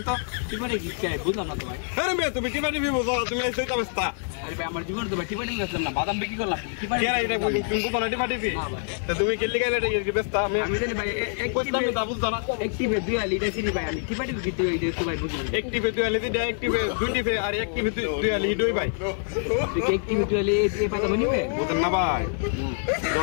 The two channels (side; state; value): right; silent; 61 dB below the other